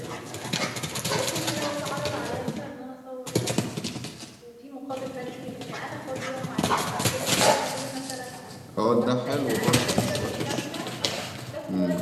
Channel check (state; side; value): identical; both; correlation 1.00